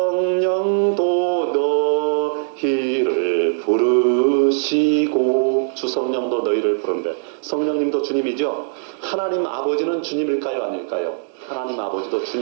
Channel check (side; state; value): left; silent; digital silence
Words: 너희를 부르시고, 주 성령도 너희를 부른대. 성령님도 주님이죠. 하나님 아버지는 주님일까요? 아닐까요? 하나님 아버지도